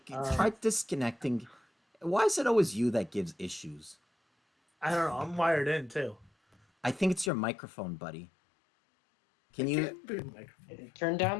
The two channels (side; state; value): right; drops out; at 7.3 s